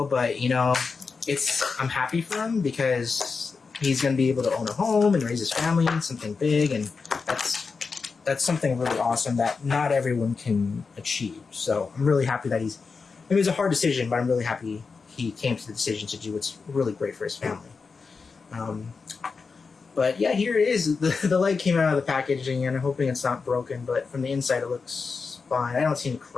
But I'm happy for him because he's going to be able to own a home and raise his family and something big, and that's something really awesome that not everyone can achieve. So I'm really happy that it was a hard decision, but I'm really happy he came to the decision to do what's really great for his family. But yeah, here it is. The leg came out of the packaging, and I'm hoping it's not broken, but from the inside it looks fine. I don't see any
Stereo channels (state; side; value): quieter; right; 4.8 dB